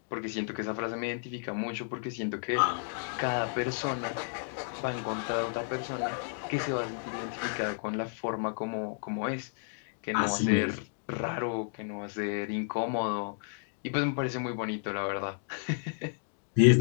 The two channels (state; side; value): silent; right; digital silence